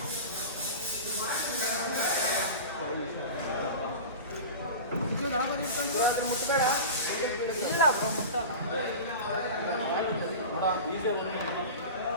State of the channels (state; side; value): inverted; both; correlation -0.31